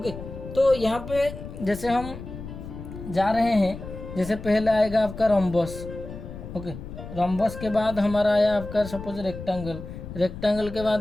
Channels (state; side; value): noise; left; rumble, 11 dB below the sound